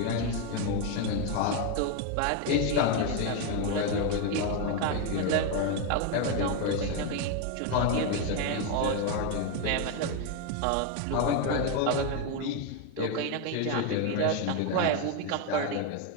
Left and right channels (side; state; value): both; different; correlation 0.02